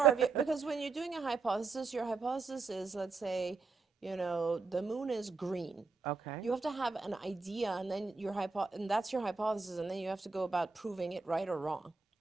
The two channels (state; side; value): quieter; left; 4.2 dB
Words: because when you're doing a hypothesis, your hypothesis is, let's say, the moon is green. Okay. You have to have an idea, and then and that's your hypothesis, and then you have to go about proving it right or wrong.